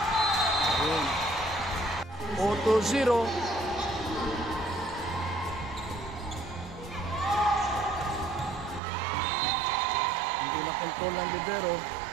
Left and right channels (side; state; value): left; drops out; at 8.8 s